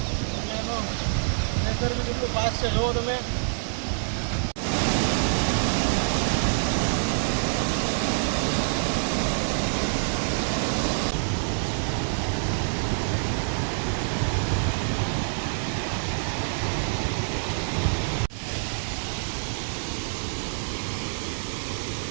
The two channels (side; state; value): left; silent; digital silence